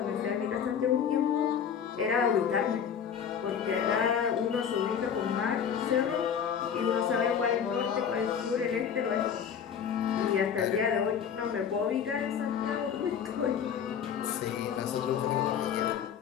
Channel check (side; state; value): right; quieter; 7.7 dB